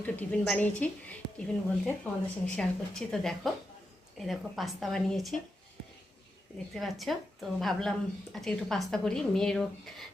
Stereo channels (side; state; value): both; normal; correlation 0.87